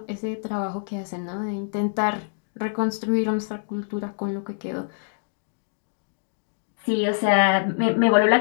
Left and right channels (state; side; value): silent; right; digital silence